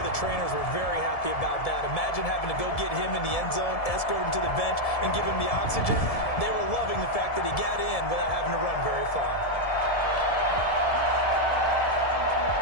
the trainers were very happy about that. Imagine having to go get him in the end zone, escort him to the bench, and give him the oxygen. They were loving the fact that he got in without having to run very far.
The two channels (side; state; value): right; late; 1.7 ms